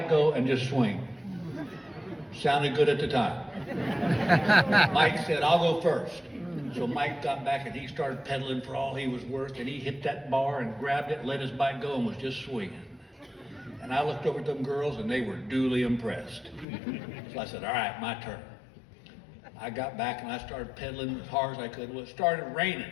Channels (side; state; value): right; drops out; at 16.7 s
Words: go, and just swing. Sounded good at the time. Mike said, I'll go first. So Mike got back and he started pedaling for all he was worth, and he hit that bar and grabbed it, let his bike go, and was just swinging. And I looked over at them girls and they were duly impressed. So I said, all right, my turn. I got back and I started pedaling as hard as I could. Well, it started raining.